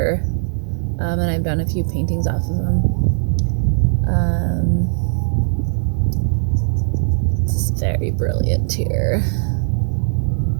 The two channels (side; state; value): left; silent; digital silence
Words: and I've done a few paintings off of them. It's very brilliant here.